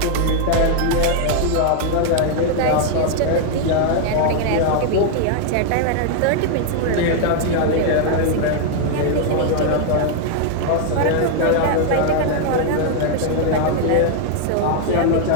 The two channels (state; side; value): different; both; correlation 0.00